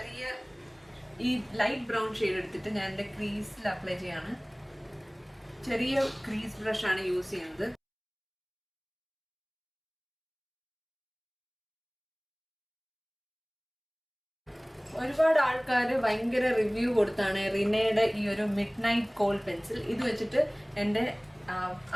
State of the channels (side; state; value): both; identical; correlation 1.00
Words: ഈ ലൈറ്റ് ബ്രൗൺ ഷെയ്ഡ് എടുത്തിട്ട് ഞാൻ എൻ്റെ ക്രീസിൽ അപ്ലൈ ചെയ്യാണ്. ചെറിയ ക്രീസ് ബ്രഷ് ആണ് യൂസ് ചെയ്യുന്നത്. ഒരുപാട് ആൾക്കാർ ഭയങ്കര റിവ്യൂ കൊടുത്താണ് റിനയുടെ ഈ ഒരു മിഡ് നൈറ്റ് കോൾ പെൻസിൽ. ഇത് വെച്ചിട്ട് എൻ്റെ